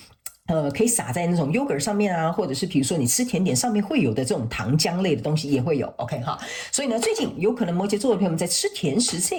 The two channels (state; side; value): identical; both; correlation 1.00